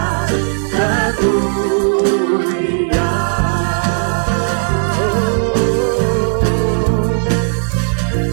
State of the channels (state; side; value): silent; left; 69 dB below the other